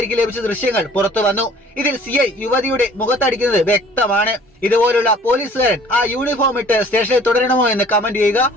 ലഭിച്ച ദൃശ്യങ്ങൾ പുറത്തു വന്നു. ഇതിൽ CI യുവതിയുടെ മുഖത്തടിക്കുന്നത് വ്യക്തമാണ്. ഇതുപോലുള്ള പോലീസുകാരൻ ആ യൂണിഫോം ഇട്ട് സ്റ്റേഷനിൽ തുടരണമോ എന്ന് കമന്റ് ചെയ്യുക.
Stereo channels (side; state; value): both; normal; correlation 0.52